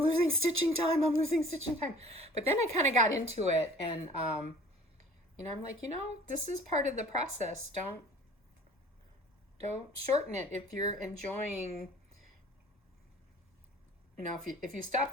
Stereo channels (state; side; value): normal; both; correlation 0.49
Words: losing stitching time. But then I kind of got into it, and I'm like, this is part of the process. Don't shorten it if you're enjoying. If you